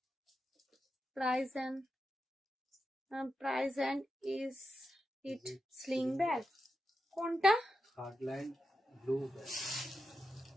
price and is it sling bag? কোনটা? Third line blue bag,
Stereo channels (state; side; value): normal; both; correlation 0.88